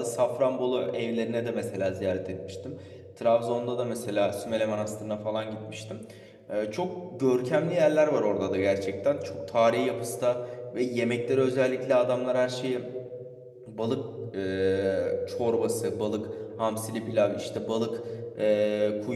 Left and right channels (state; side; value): identical; both; correlation 1.00